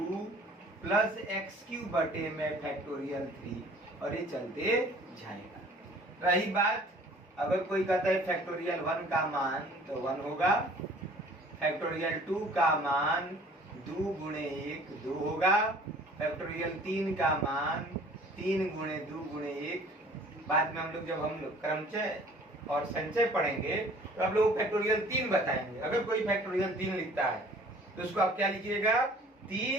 प्लस एक्स क्यूब बटे में फैक्टोरियल 3 और ये चलते जाएगा। रही बात अगर कोई कहता है फैक्टोरियल 1 का मान तो 1 होगा, फैक्टोरियल 2 का मान 2 गुणे 1 2 होगा, फैक्टोरियल 3 का मान 3 गुणे 2 गुणे 1। बाद में हम लोग जब हम लोग क्रमचय और संचय पढ़ेंगे तो आप लोग फैक्टोरियल 3 बताएंगे। अगर कोई फैक्टोरियल 3 लिखता है तो उसको आप क्या लिखिएगा,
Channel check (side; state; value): both; normal; correlation 0.51